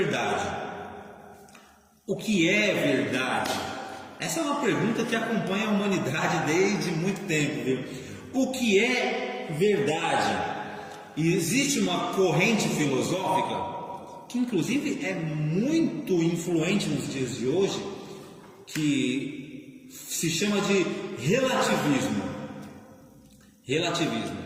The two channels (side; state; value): both; identical; correlation 1.00